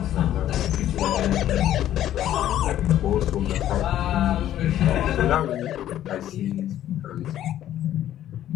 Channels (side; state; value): right; quieter; 12.1 dB